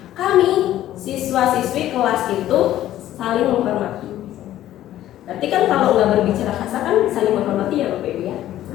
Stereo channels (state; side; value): quieter; right; 13.2 dB